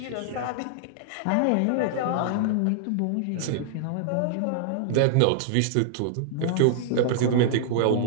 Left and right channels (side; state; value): both; different; correlation -0.01